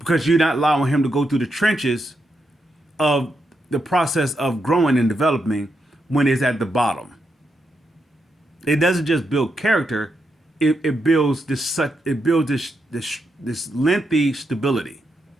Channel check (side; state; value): both; normal; correlation 0.83